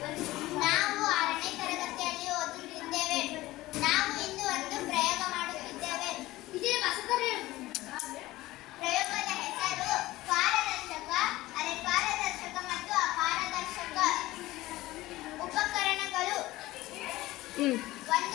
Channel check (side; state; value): right; quieter; 17.7 dB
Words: ನಾವು 6ನೇ ತರಗತಿಯಲ್ಲಿ ಓದುತ್ತಿದ್ದೇವೆ. ನಾವು ಇಂದು ಒಂದು ಪ್ರಯೋಗ ಮಾಡುತ್ತಿದ್ದೇವೆ. ಪ್ರಯೋಗದ ಹೆಸರು ಪಾರದರ್ಶಕ, ಅರೆಪಾರದರ್ಶಕ ಮತ್ತು ಅಪಾರದರ್ಶಕ. ಉಪಕರಣಗಳು: